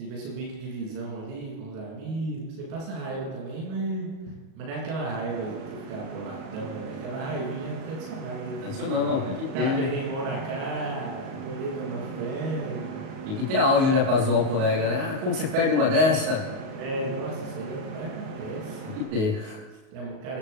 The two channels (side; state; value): left; late; 38 ms